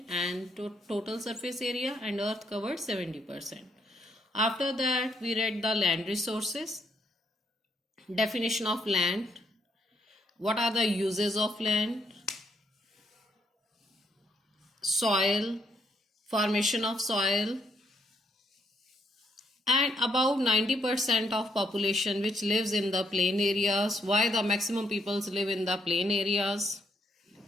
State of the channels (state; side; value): normal; both; correlation 0.73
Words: and total surface area, and Earth covers 70%. After that, we read the land resources, definition of land, what are the uses of land, soil, formation of soil, and about 90% of population which lives in the plain areas, why the maximum peoples live in the plain areas,